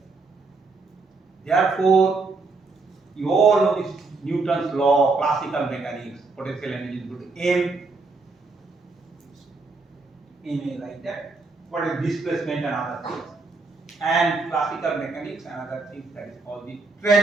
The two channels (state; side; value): quieter; left; 3.8 dB